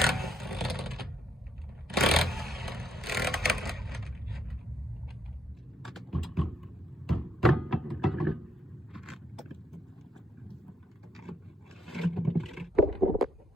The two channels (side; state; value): both; normal; correlation 0.74